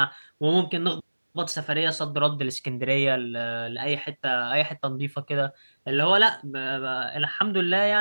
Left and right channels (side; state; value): both; inverted; correlation -1.00